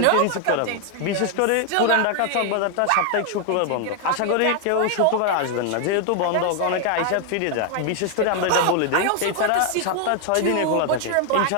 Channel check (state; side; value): different; both; correlation 0.00